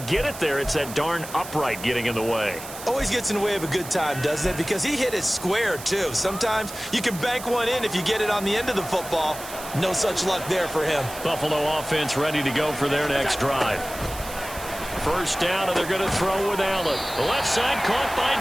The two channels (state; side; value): noise; right; hiss, 12 dB below the sound